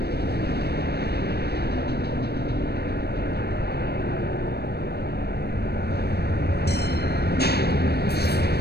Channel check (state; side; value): late; right; 0.47 ms